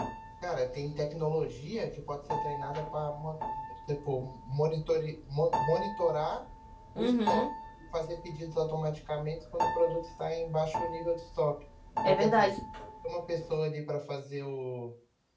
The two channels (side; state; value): both; identical; correlation 1.00